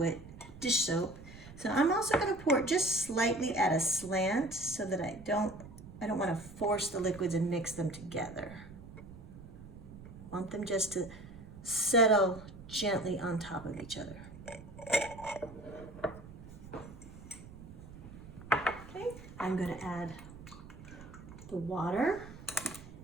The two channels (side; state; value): right; noise; rumble, 16 dB below the sound